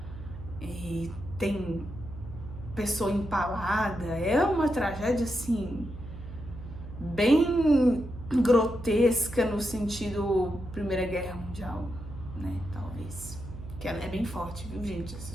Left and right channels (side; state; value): right; noise; hum, 12 dB below the sound